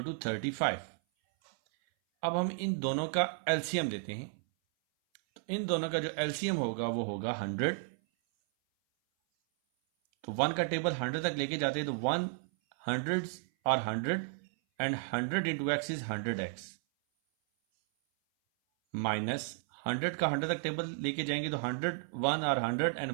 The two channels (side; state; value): left; silent; 56 dB below the other